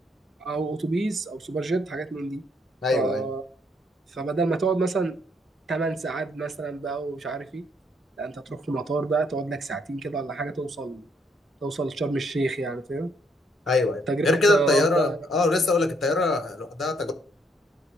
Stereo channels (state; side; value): normal; both; correlation 0.70